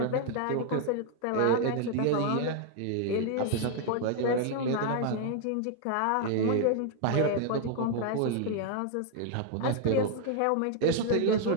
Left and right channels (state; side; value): different; both; correlation 0.00